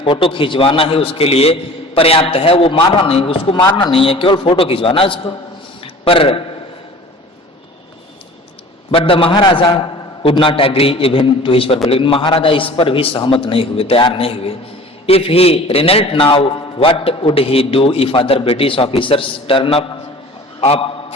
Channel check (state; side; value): normal; both; correlation 0.44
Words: फोटो खिंचवाना ही उसके लिए पर्याप्त है। वो मारना नहीं, उसको मारना नहीं है, केवल फोटो खिंचवाना उसको। पर but the Maharaja would not agree even to his purpose, लेकिन महाराजा इस पर भी सहमत नहीं हुए, तैयार नहीं हुए। If he relent now what would he do if other British officers turn up